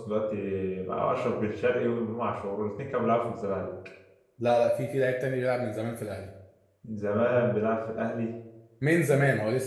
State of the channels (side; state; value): both; identical; correlation 1.00